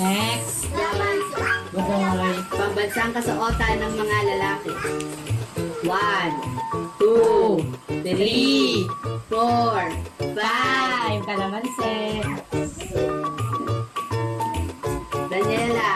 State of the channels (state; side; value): identical; both; correlation 1.00